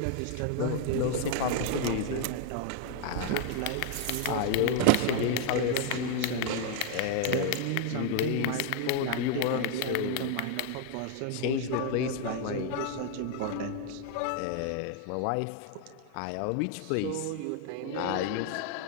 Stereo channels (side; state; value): both; different; correlation 0.00